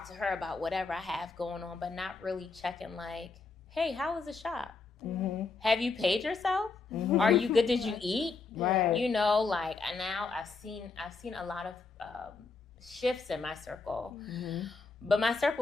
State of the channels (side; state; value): right; quieter; 4.3 dB